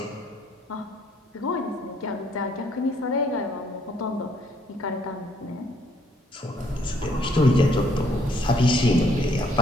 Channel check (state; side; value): normal; both; correlation 0.66